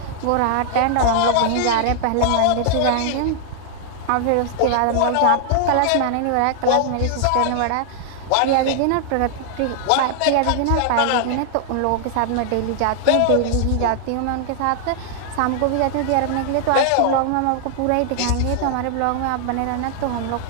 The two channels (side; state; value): both; different; correlation 0.00